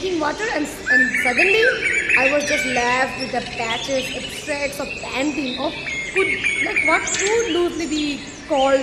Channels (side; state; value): both; identical; correlation 1.00